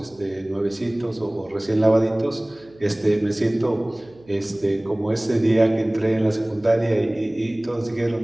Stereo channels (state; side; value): noise; right; hum, 27 dB below the sound